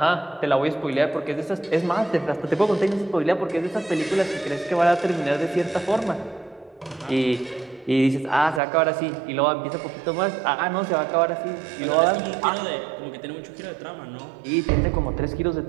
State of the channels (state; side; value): drops out; left; at 8.6 s